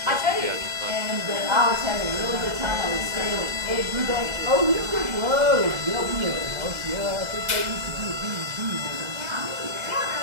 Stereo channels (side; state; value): left; late; 2.0 ms